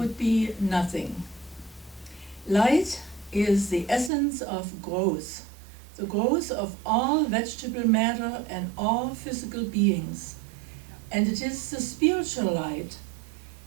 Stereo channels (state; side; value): drops out; left; at 4.1 s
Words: be nothing. Light is the essence of growth, the growth of all vegetable matter and all physical beings. And it is the spiritual light